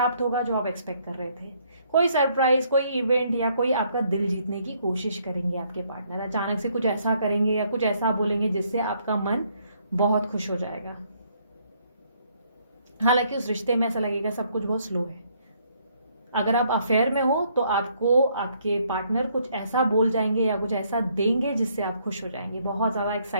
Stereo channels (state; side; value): inverted; both; correlation -0.68